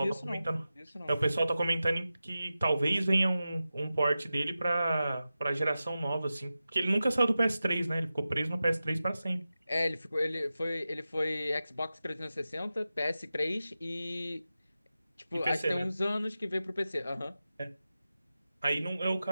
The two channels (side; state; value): both; inverted; correlation -0.93